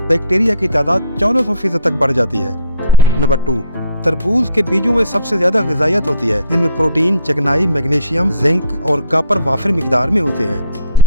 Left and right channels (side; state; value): both; inverted; correlation -0.60